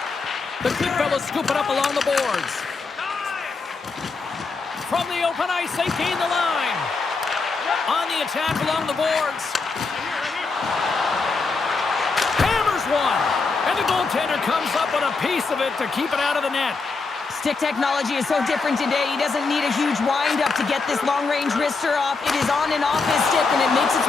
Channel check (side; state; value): right; quieter; 4.3 dB